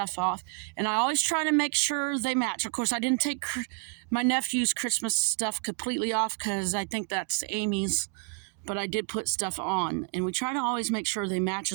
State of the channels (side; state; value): left; quieter; 37.6 dB